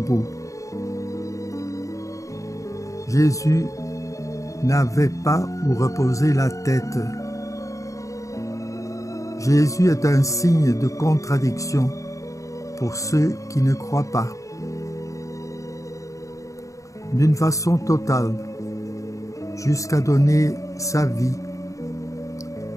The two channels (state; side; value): late; right; 0.16 ms